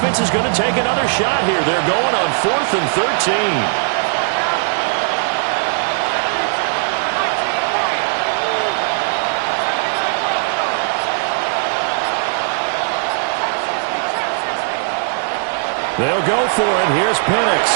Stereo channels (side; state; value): left; silent; digital silence